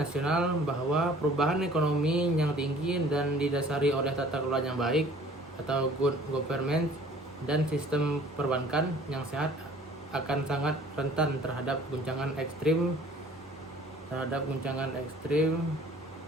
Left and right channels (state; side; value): normal; both; correlation 0.52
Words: bahwa perubahan ekonomi yang tinggi dan didasari oleh tata kelola yang baik atau good government dan sistem perbankan yang sehat akan sangat rentan terhadap guncangan ekstrim